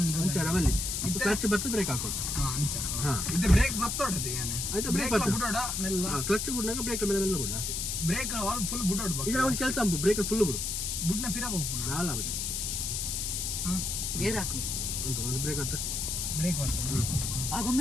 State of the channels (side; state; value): left; noise; hiss, 2 dB below the sound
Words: ಅಂಚ ರವಲ್ಲಿ ಕ್ಲಚ್ ಬತ್ತು ಬ್ರೇಕ್ ಹಾಕೊಂಡು ಇದು ಬ್ರೇಕ್ ಬತ್ತೋಡದೆ ಆಯ್ತು ಬ್ರೇಕ್ ಬುಡೋಡ ಮೆಲ್ಲ ಕ್ಲಚ್ ಬಿಡ್ನಾಗ ಬ್ರೇಕ್ ಮೇಲೆ ಮೆಲ್ಲ ಬಿಡು ಅಷ್ಟೇ ಬ್ರೇಕ್ ಆಲ್ ಫುಲ್ ಬುಡೋಡ ಈಗ ಒಂದು ಕೆಲಸ ಅಂಬು ಬ್ರೇಕ್ ಫುಲ್ ಬಿಡು ಬುಡ್ನ ಪಿರ ಹೋಗ್ಬಿಡು ನಾಲ ಬಚ್ಚ ಗೇರ್ ಹಾಕು ಅಂತ ಒಂದು ಬ್ರೇಕ್ ಬತ್ತ ಬ್ರೇಕ್ ಬತ್ತ